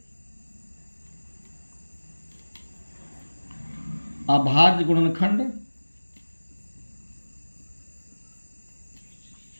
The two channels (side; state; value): both; inverted; correlation -1.00